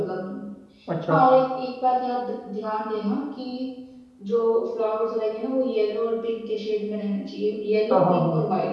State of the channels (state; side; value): identical; both; correlation 1.00